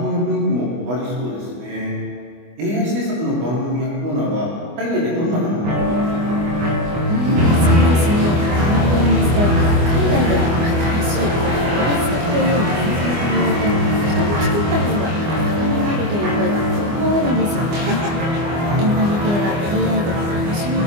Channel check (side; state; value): left; late; 24 ms